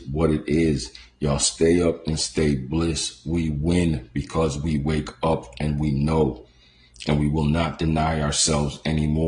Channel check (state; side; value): identical; both; correlation 1.00